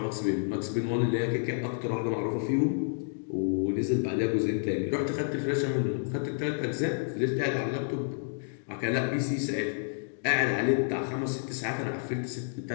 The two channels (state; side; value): silent; right; digital silence